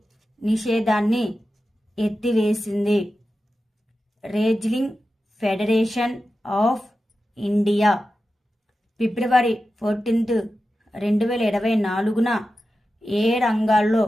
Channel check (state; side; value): normal; both; correlation 0.92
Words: నిషేధాన్ని ఎత్తివేసింది? Wrestling federation of India. ఫిబ్రవరి 14, 2024న ఏ రంగాల్లో